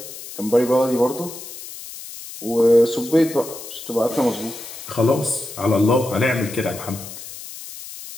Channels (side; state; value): left; noise; hiss, 13 dB below the sound